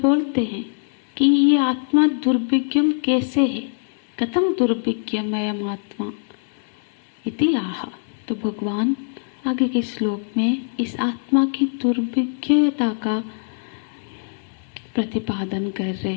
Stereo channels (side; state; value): right; silent; 64 dB below the other